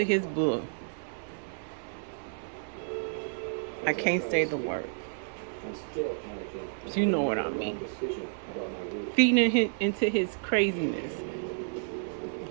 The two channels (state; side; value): silent; left; 57 dB below the other